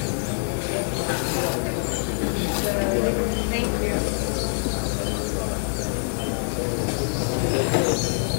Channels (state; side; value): silent; right; digital silence